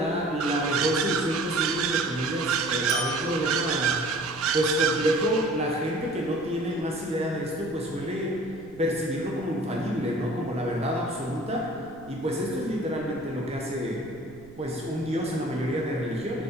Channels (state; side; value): noise; right; rumble, 21 dB below the sound